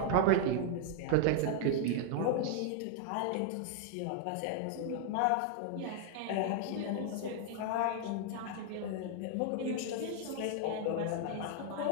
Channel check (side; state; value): both; different; correlation 0.00